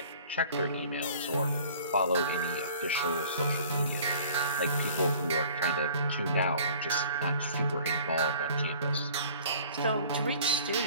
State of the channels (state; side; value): inverted; both; correlation -0.50